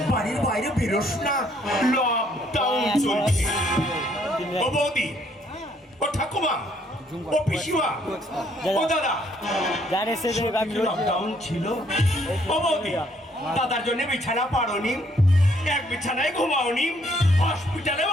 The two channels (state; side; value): normal; both; correlation 0.66